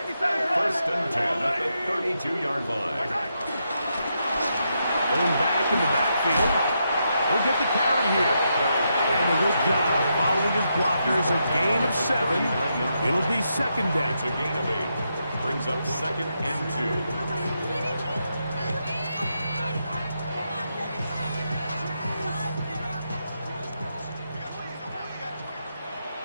1st and 10 at the 32-yard line. Going back in the backfield. He'll get the carry here. And a good job following his blockers. A gain of 7. It'll be 2nd down. It's a gain of 8. Brings up 2nd and 2.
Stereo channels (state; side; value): inverted; both; correlation -0.82